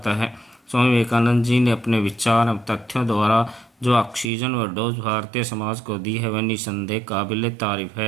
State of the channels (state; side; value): drops out; left; at 4.2 s